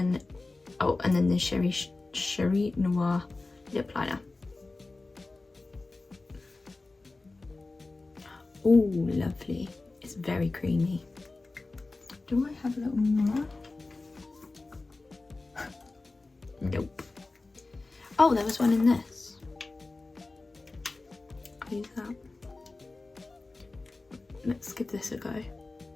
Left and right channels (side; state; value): right; quieter; 3.4 dB